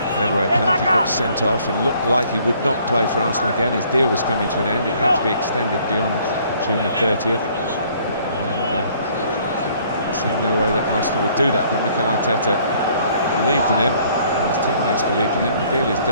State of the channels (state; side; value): inverted; both; correlation -0.60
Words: gave away a penalty, got sent off and looked like he would not play for Arsenal again. His deal was coming to an end. It had to be extended beyond June the 30th. And there seemed no way that Arsenal would do that. But Mikel Arteta believed in him, and his teammates believed in him. The deal is